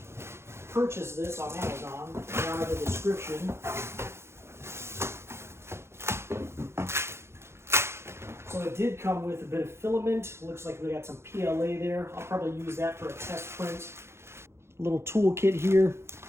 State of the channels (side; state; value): left; late; 0.13 ms